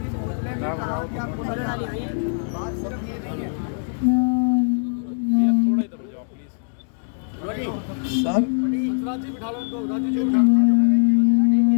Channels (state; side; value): silent; right; digital silence